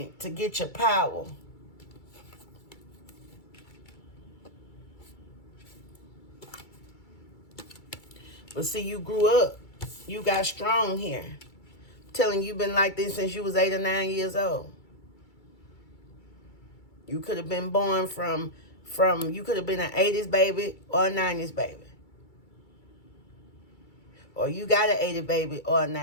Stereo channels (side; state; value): right; late; 2.3 ms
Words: to get your power. But see, you grew up. You got strong here. I'm telling you, you've been like this since you was 8 or 9 years old. You could have been born from you could have been an 80s baby or a 90s baby. Or you got an 80s baby or a